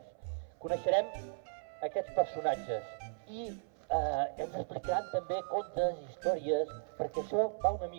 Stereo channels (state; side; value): silent; left; 53 dB below the other